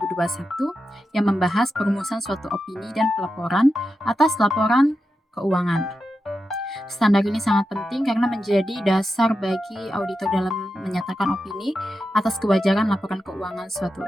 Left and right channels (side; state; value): both; normal; correlation 0.89